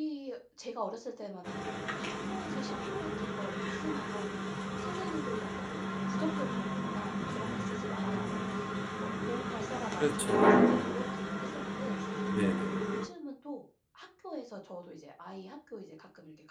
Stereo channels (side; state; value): both; identical; correlation 1.00